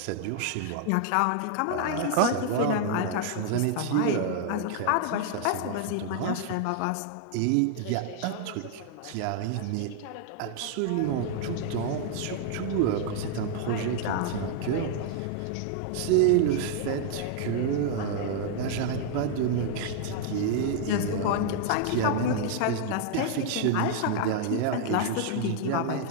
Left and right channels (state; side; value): different; both; correlation 0.00